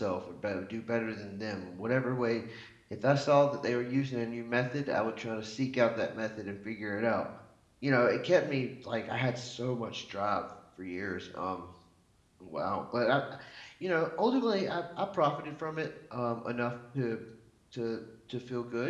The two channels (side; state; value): both; identical; correlation 1.00